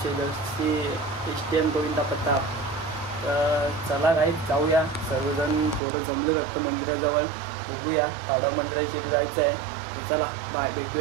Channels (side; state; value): left; drops out; at 5.8 s